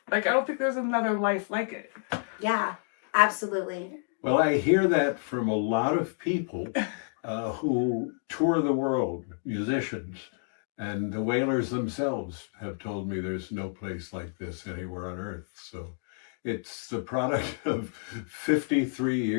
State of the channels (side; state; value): right; silent; 58 dB below the other